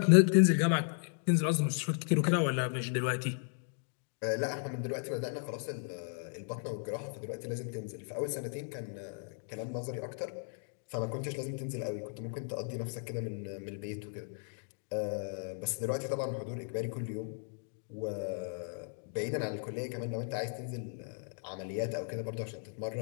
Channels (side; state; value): right; silent; 54 dB below the other